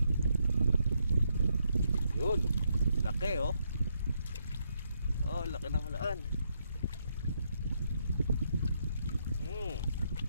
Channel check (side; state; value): both; inverted; correlation -0.77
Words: yun, laki oh. Oh, laki ng halaan.